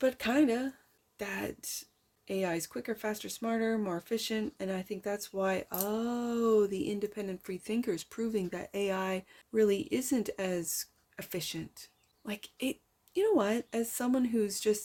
kind of, that AI is quicker, faster, smarter, more efficient. And I think that's why, the independent free thinkers proving that AI really isn't as efficient. Like it, you know what? As someone who's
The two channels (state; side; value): identical; both; correlation 1.00